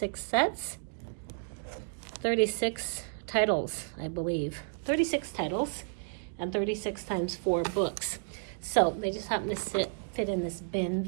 sets. 36 titles, I believe. 36 titles and 36 times 4 books. So they just happen to fit in this bin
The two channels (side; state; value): left; silent; digital silence